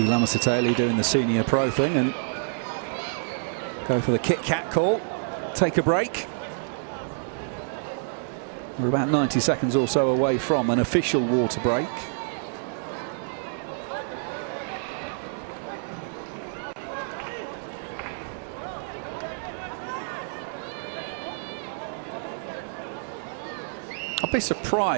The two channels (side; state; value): left; silent; digital silence